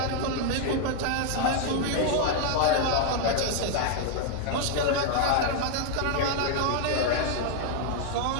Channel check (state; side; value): different; both; correlation 0.00